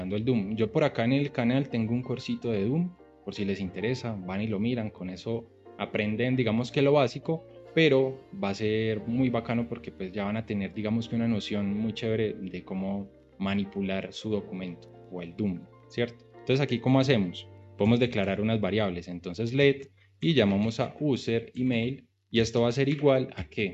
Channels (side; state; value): both; identical; correlation 1.00